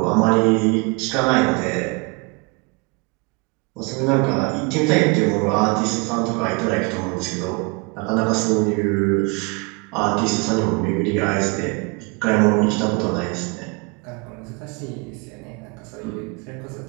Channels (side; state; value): left; quieter; 29.8 dB